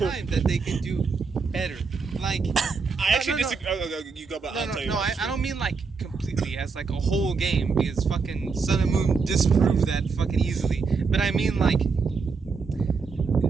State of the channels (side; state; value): left; quieter; 4.9 dB